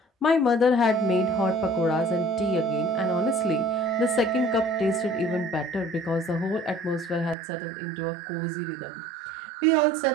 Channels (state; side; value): drops out; left; at 7.4 s